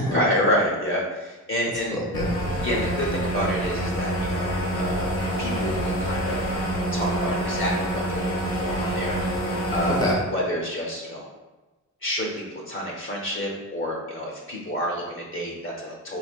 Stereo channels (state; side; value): normal; both; correlation 0.25